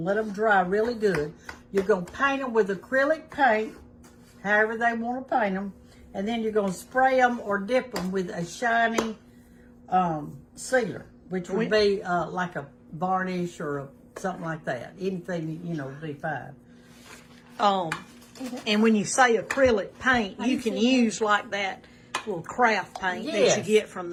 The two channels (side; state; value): both; identical; correlation 1.00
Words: to let them dry really good. You're going to paint them with acrylic paint, however they want to paint them, and then you're going to spray them or dip them with a shiny sealer, which would be like a varnish or something like that. Anything, would be fine. And when you say acrylic paint, you can use like that little craft paint that you get from